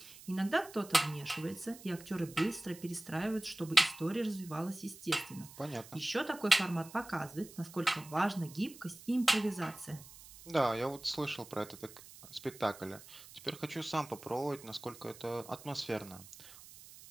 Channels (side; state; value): right; noise; hiss, 18 dB below the sound